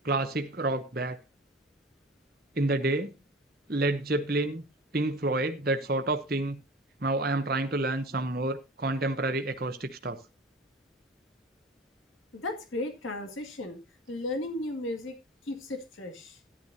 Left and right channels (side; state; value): both; normal; correlation 0.38